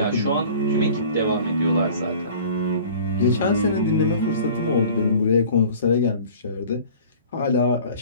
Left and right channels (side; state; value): both; inverted; correlation -0.46